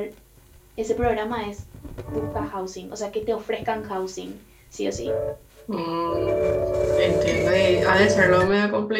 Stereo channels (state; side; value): identical; both; correlation 1.00